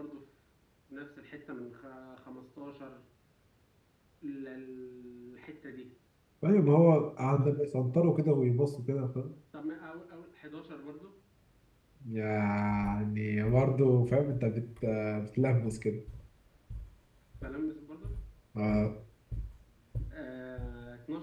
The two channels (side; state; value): both; identical; correlation 1.00